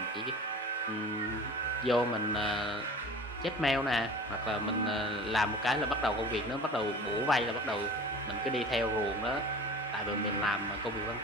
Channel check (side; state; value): both; normal; correlation 0.40